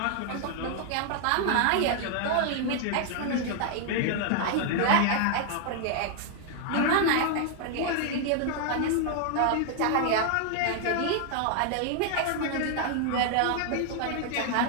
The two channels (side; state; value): both; different; correlation 0.00